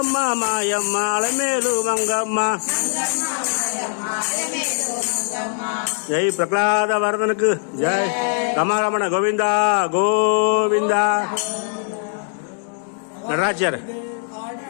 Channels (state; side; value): silent; right; 63 dB below the other